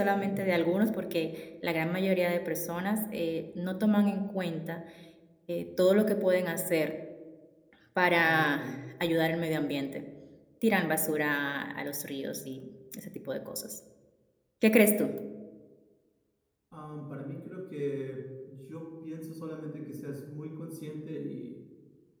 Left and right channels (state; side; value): identical; both; correlation 1.00